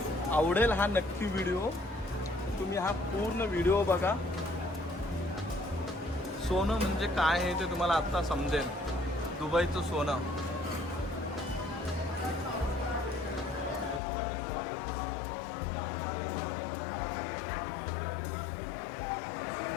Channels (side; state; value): right; drops out; at 14.0 s